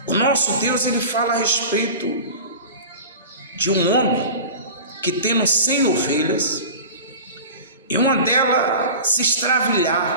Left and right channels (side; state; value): both; inverted; correlation -0.35